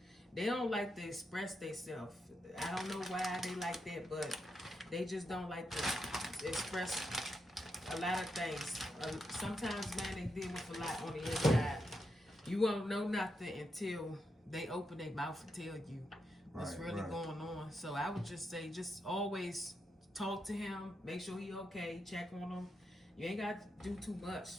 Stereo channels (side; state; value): both; normal; correlation 0.84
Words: express themselves. I don't know why they like that, but they just don't like to express a lot of things. Sometimes, man, they deal with a lot on the inside. You won't know nothing until they open their mouth and tell you what's really going on. So I would just say, just always talk to him, make sure he okay, check on him. You ain't got to do too